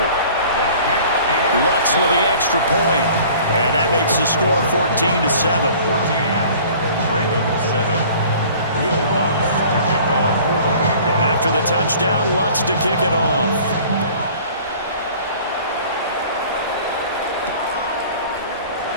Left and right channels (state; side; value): inverted; both; correlation -0.48